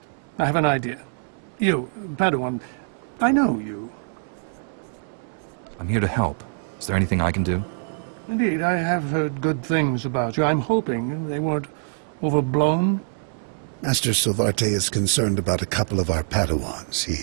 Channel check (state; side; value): silent; left; digital silence